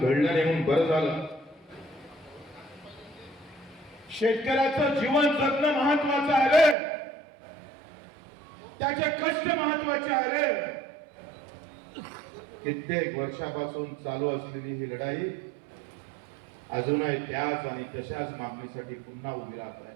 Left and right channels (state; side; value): drops out; left; at 6.8 s